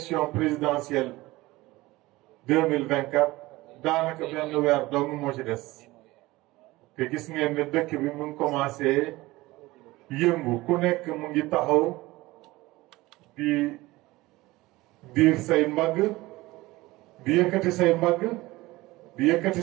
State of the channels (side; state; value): left; quieter; 19.6 dB